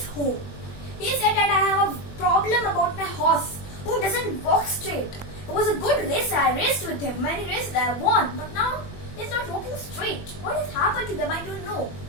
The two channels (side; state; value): right; late; 21 ms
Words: home. He said that I have a problem about my horse who doesn't walk straight. It was a good race. I raced with him. Many races I won. But now he's not walking straight. What has happened to them? I don't know.